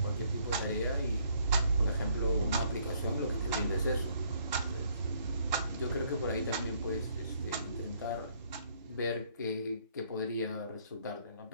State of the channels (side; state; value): both; inverted; correlation -0.66